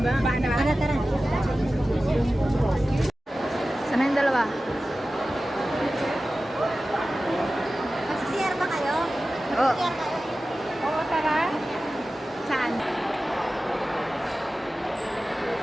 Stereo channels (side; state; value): both; normal; correlation 0.95